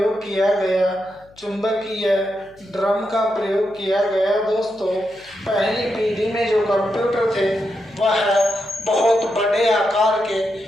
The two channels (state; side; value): noise; left; hum, 29 dB below the sound